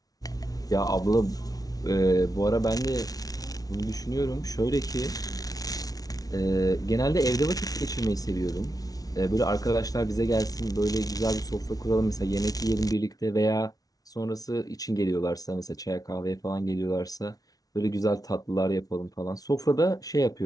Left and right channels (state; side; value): late; right; 0.18 ms